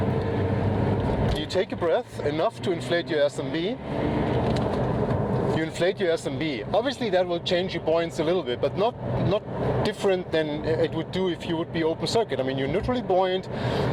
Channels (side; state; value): both; identical; correlation 1.00